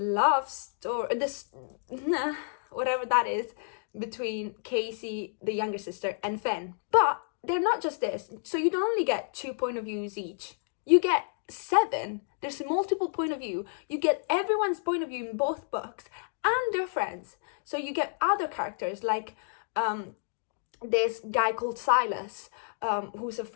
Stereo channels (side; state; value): right; silent; digital silence